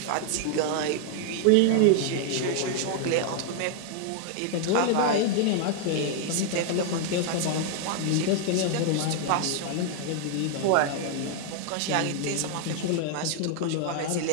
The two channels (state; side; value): different; both; correlation 0.00